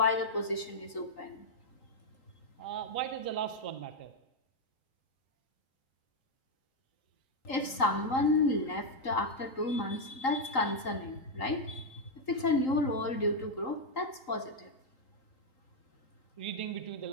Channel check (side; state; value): right; late; 3.8 ms